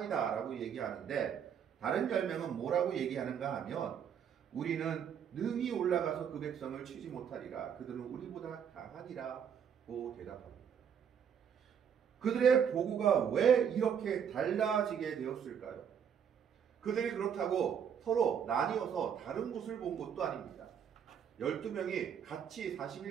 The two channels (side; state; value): left; quieter; 8.0 dB